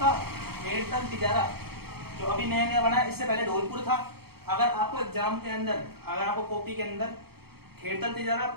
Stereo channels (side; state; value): left; late; 0.96 ms